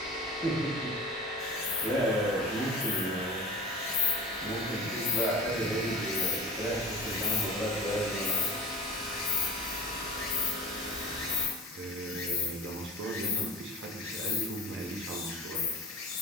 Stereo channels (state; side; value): normal; both; correlation 0.36